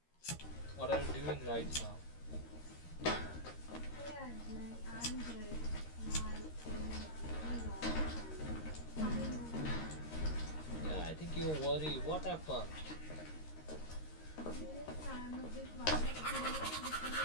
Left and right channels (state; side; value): late; right; 13 ms